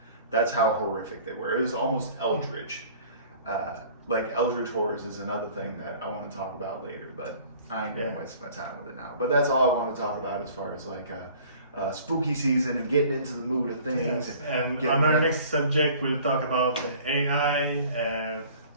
That's how horrific they were. It was almost eldritch. Like eldritch horrors is another thing that I want to talk about later, but I ain't gonna waste my time with it now. But that's all I want to talk about as far as like spooky season and getting into the mood of things. Yes. And getting on our ready. next subject, we'll talk about AI,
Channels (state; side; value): inverted; both; correlation -0.49